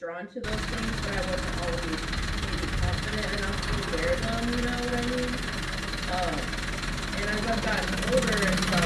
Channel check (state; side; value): identical; both; correlation 1.00